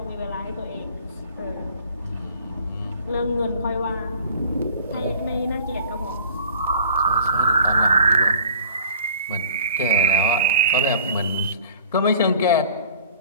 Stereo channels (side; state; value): both; inverted; correlation -0.48